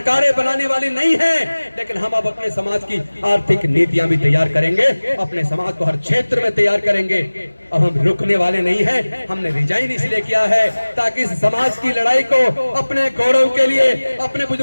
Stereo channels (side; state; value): both; inverted; correlation -1.00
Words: बनाने वाली नहीं है, लेकिन हम अब अपने समाज की आर्थिक नीतियां भी तैयार करेंगे, अपने समाज को हर क्षेत्र में तैयार करेंगे। अब हम रुकने वाले नहीं है। हमने रिजाइन इसलिए किया है ताकि इस समाज की लड़ाई को, अपने गौरव के लिए, अपने